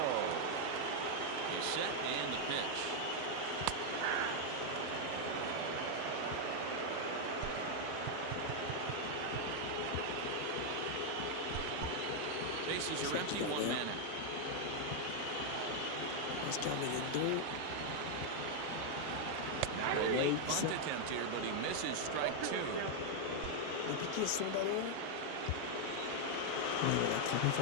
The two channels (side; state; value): both; different; correlation 0.00